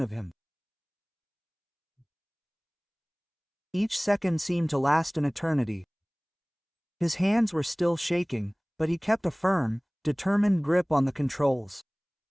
of him. Each second seemed to last an eternity. His hands were still shaking, but he kept a firm, determined grip on the controls.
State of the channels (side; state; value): both; identical; correlation 1.00